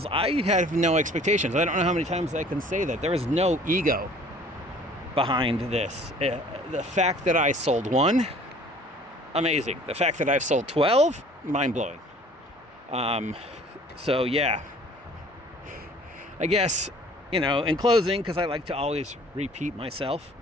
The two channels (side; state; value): both; normal; correlation 0.51